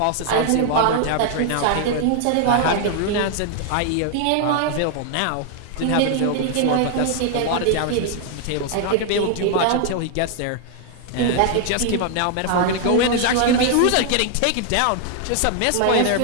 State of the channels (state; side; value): different; both; correlation 0.00